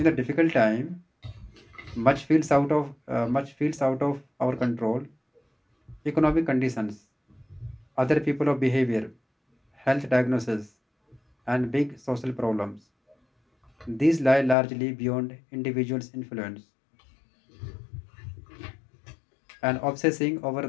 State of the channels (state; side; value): drops out; right; at 14.6 s